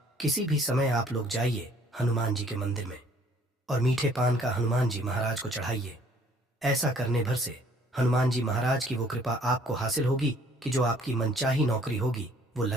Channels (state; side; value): normal; both; correlation 0.59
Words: किसी भी समय आप लोग जाइए हनुमान जी के मंदिर में और मीठे पान का हनुमान जी महाराज को चढ़ाइए। ऐसा करने भर से हनुमान जी महाराज की वो कृपा आपको हासिल होगी कि जो आपकी मनचाही नौकरी होगी वो